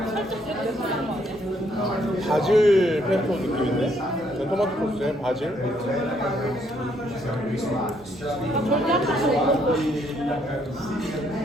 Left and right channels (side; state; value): both; normal; correlation 0.70